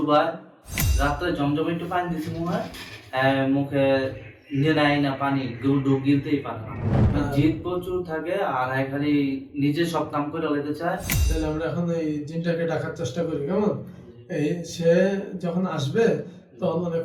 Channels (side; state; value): both; identical; correlation 1.00